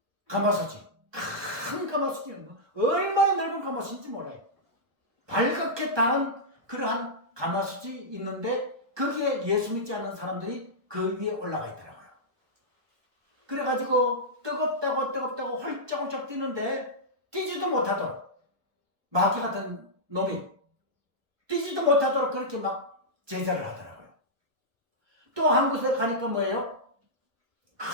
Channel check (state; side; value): late; left; 1.2 ms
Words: 가마솥이, 큰 가마솥이, 얼마나 넓은 가마솥인지 몰라요. 밝게 달은 그러한 가마솥이 있는데 거기에 예수 믿지 않는 사람들이 그 위에 올라가 있더라고요. 그래가지고 뜨겁다고 홀짝홀짝 뛰는데 뛰지도 못하도록, 마귀 같은 놈이 뛰지도 못하도록 그렇게 막 제자를 하더라고요. 또 한 곳에 가니까 뭐예요?